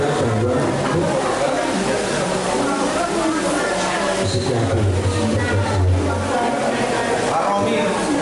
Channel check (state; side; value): identical; both; correlation 1.00